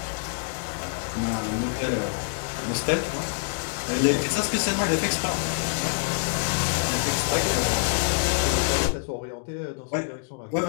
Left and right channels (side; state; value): right; silent; digital silence